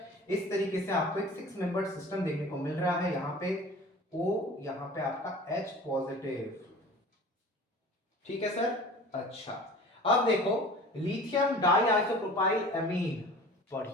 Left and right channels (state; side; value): normal; both; correlation 0.42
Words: इस तरीके से आपको एक 6 मेंबर सिस्टम देखने को मिल रहा है। यहाँ पे O, यहाँ पे आपका H पॉजिटिव, ठीक है सर। अच्छा, अब देखो लिथियम डाइआइसोप्रोपाइल अमीन,